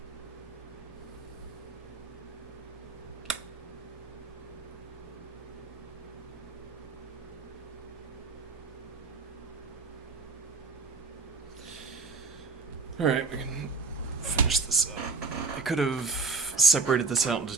Alright, we can finish this up. I could have separated this out into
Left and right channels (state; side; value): quieter; left; 4.4 dB